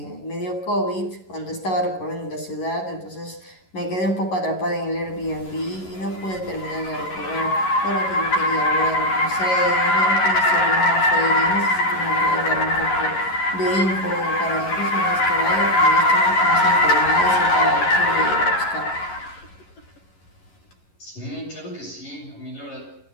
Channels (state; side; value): late; right; 11 ms